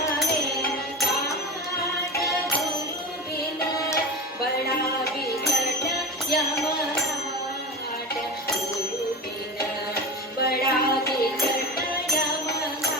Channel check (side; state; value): both; normal; correlation 0.28